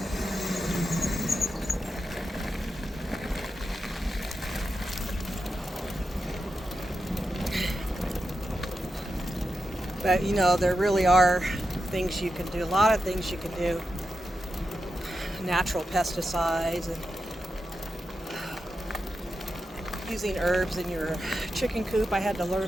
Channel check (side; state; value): both; normal; correlation 0.89